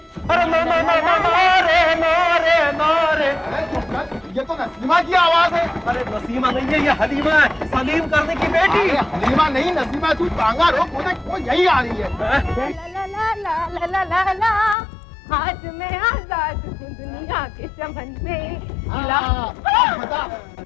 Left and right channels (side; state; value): right; drops out; at 14.8 s